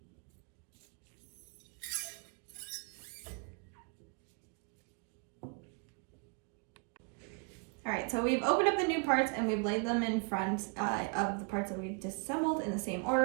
All right, so we've opened up the new parts and we've laid them in front of the parts that we disassembled in the same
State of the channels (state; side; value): quieter; left; 35.7 dB